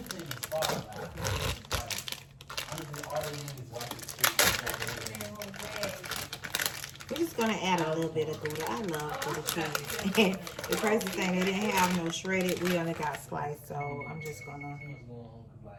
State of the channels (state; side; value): identical; both; correlation 1.00